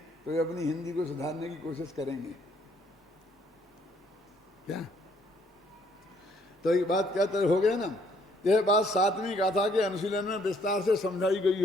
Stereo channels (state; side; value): normal; both; correlation 0.66